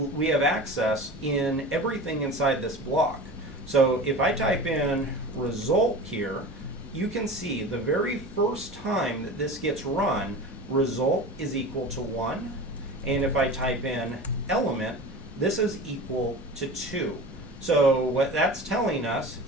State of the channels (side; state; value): both; normal; correlation 0.34